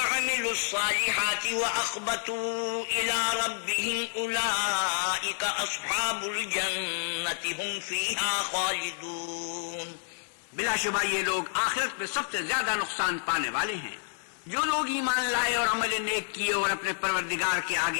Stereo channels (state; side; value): silent; right; 58 dB below the other